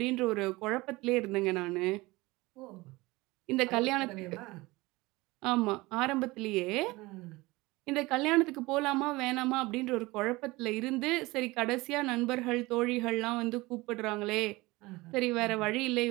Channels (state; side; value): quieter; left; 21.4 dB